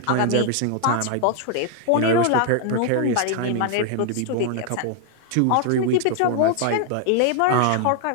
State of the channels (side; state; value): both; different; correlation 0.00